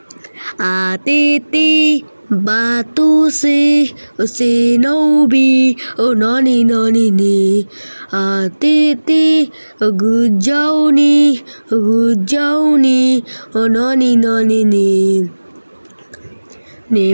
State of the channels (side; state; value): both; inverted; correlation -1.00